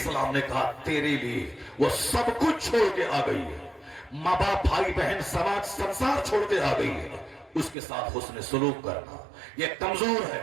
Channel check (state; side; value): drops out; left; at 7.8 s